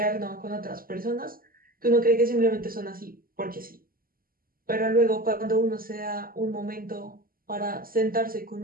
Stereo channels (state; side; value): late; left; 0.42 ms